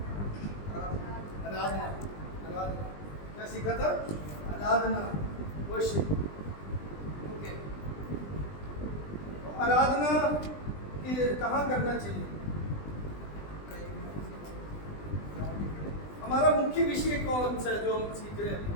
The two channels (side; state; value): right; late; 20 ms